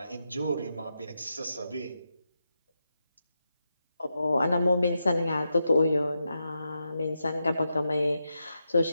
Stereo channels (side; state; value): both; inverted; correlation -0.86